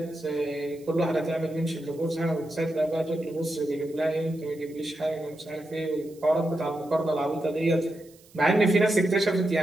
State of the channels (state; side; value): noise; right; hiss, 27 dB below the sound